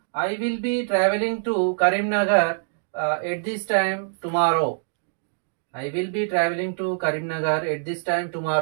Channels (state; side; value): silent; left; digital silence